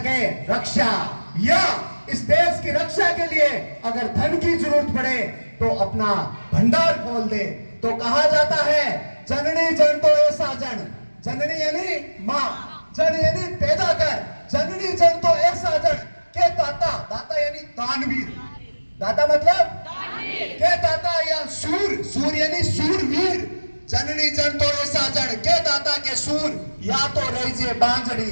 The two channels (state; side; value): inverted; both; correlation -1.00